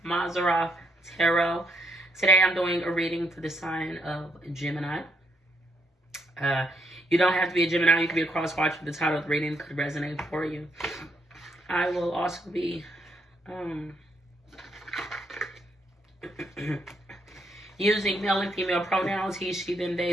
Mazarov Tarot. Today I'm doing a reading for the sign of Gemini. You don't have to be a Gemini. You can be a cross-watcher. The title of the reading could resonate for you. I will also be using male and female pronouns, he, she, them, they,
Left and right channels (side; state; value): both; normal; correlation 0.74